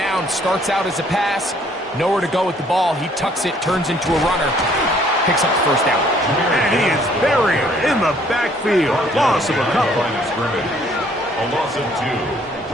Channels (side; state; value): both; normal; correlation 0.62